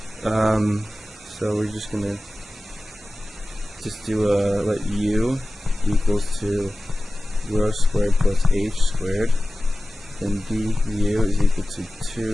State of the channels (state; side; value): normal; both; correlation 0.96